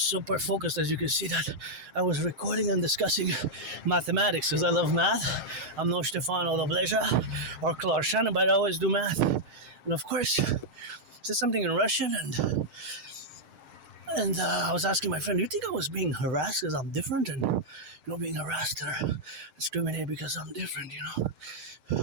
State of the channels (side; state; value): left; late; 6.5 ms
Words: super focused, as you can see, that I was recording and discussing mathematics, because I love math. I'm no Stefano Dobleja or Clark Shannon, but I always do math. And of course, said something in Russian, and I was asking my friend, do you think I was being harassed because I'm different? And, being harassed or discriminated because I'm different,